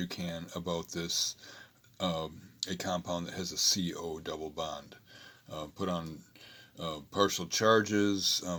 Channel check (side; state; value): both; identical; correlation 1.00